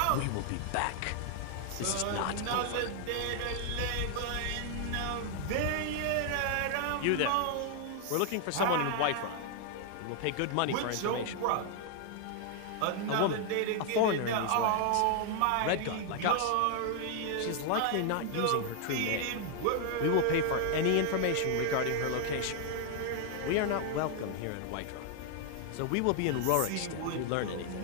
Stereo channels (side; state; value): both; different; correlation 0.00